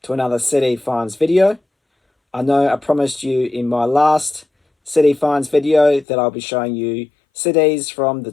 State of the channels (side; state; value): right; drops out; at 6.1 s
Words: to another CD Finds video. I know I promised you in my last CD Finds video that I'll be showing you CDs from the